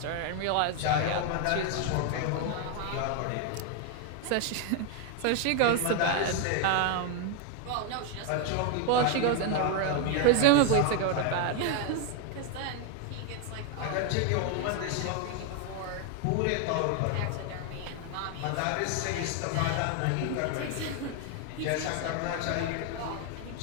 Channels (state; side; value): different; both; correlation 0.01